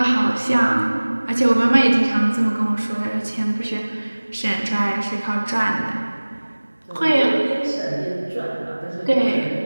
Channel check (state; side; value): inverted; both; correlation -1.00